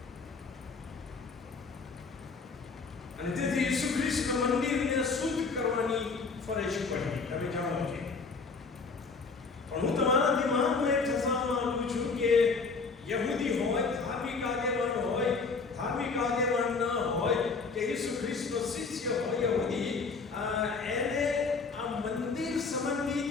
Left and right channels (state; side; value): quieter; right; 4.5 dB